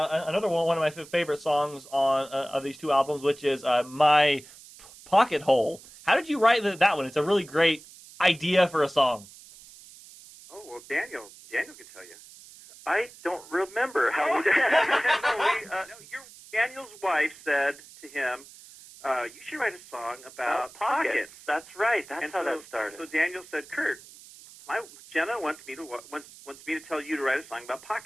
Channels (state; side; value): noise; right; hiss, 20 dB below the sound